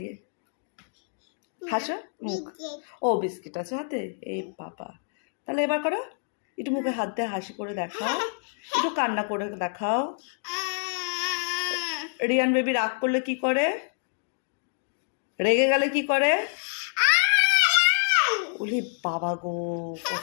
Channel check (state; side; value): silent; right; digital silence